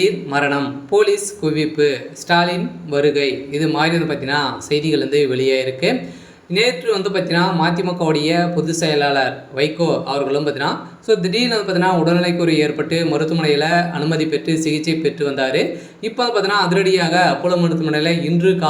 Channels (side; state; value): both; identical; correlation 1.00